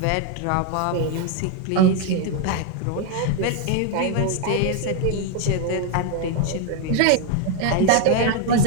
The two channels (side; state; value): both; different; correlation 0.01